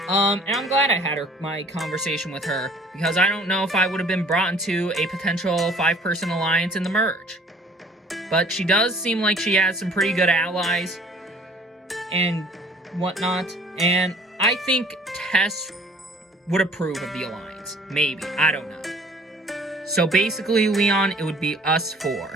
And I'm glad I had my conversation with her, because I don't know if I would have been brought into a potential 5-person alliance in the merge. But she does seem like she has some pretty good allies and whatnot, and I think Tess would approve of the alliance. Maybe. I don't know. So basically, Leon, it would be us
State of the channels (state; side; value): normal; both; correlation 0.53